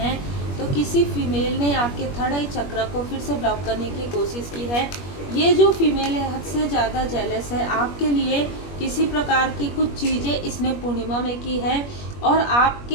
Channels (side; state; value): right; late; 21 ms